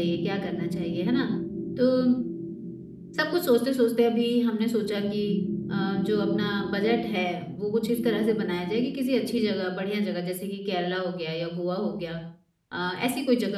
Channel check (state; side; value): identical; both; correlation 1.00